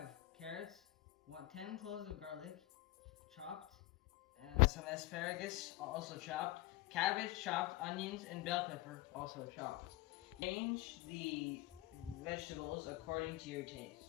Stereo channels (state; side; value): quieter; right; 17.8 dB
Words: carrots, 10 cloves of garlic, chopped, some asparagus, also chopped, cabbage chopped, onions, and bell pepper, also chopped. Change the vegetables according to your taste.